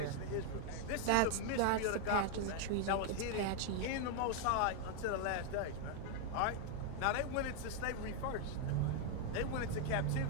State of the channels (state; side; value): different; both; correlation 0.00